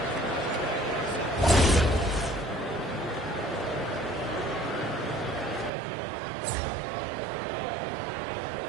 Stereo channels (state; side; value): drops out; left; at 5.7 s